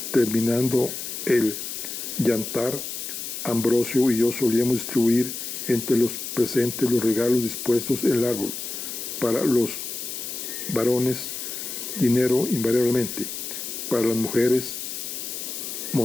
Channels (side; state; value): left; noise; hiss, 6 dB below the sound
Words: Terminando el yantar, Ambrosio y yo solíamos distribuir entre los presentes los regalos dispuestos en el árbol. Para los varones, dinero invariablemente. Para las mujeres,